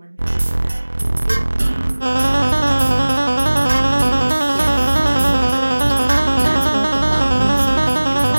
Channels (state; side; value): inverted; both; correlation -1.00